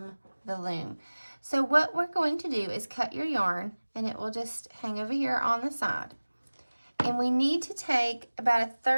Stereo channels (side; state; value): both; inverted; correlation -1.00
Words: the loom. So what we're going to do is cut your yarn, and it will just hang over here on the side. And we need to take about a